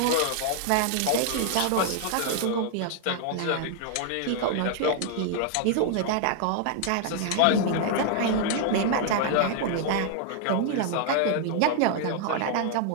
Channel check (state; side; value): different; both; correlation 0.00